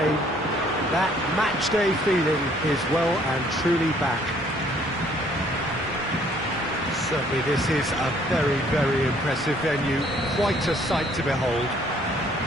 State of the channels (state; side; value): normal; both; correlation 0.61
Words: That match-day feeling is well and truly back. Certainly this is a very, very impressive venue. Quite a sight to behold.